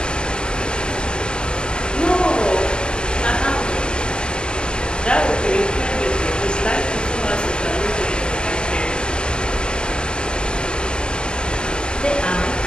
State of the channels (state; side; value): late; right; 0.050 ms